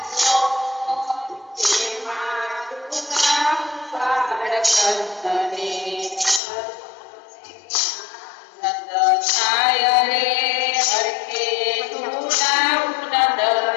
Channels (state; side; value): drops out; right; at 6.4 s